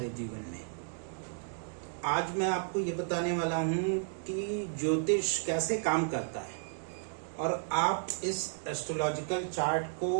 जीवन में। आज मैं आपको ये बताने वाला हूँ कि ज्योतिष कैसे काम करता है और आप इस एस्ट्रोलॉजिकल चार्ट को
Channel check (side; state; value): left; silent; digital silence